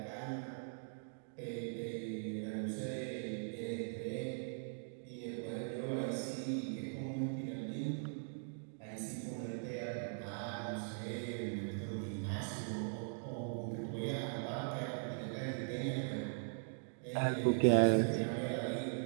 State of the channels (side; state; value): left; silent; digital silence